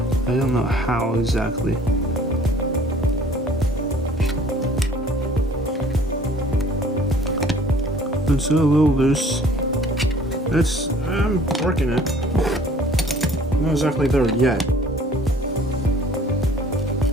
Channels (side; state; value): both; normal; correlation 0.53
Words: I don't know how exactly. It's a little loose. I'm working it. Not exactly there yet.